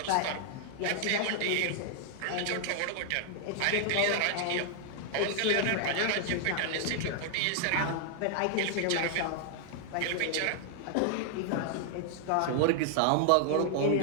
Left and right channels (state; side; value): different; both; correlation 0.00